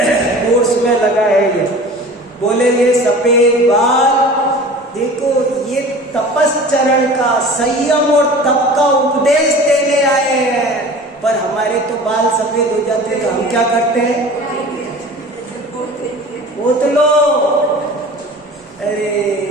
कोर्स में लगा है ये। बोले ये सफेद बाल, देखो ये तपस्चरण का, संयम और तप का उपदेश देने आए हैं। पर हमारे तो बाल सफेद हो जाते हैं तो हम क्या करते हैं? पोत लो। अरे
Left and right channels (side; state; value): both; normal; correlation 0.40